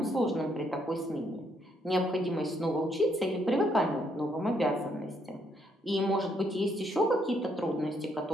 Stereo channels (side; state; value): both; normal; correlation 0.73